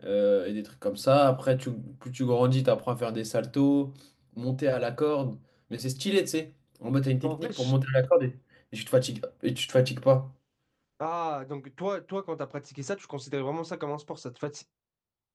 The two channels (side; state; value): both; identical; correlation 1.00